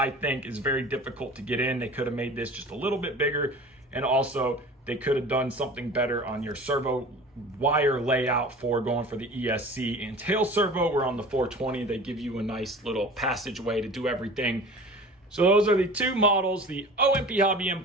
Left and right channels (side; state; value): both; normal; correlation 0.40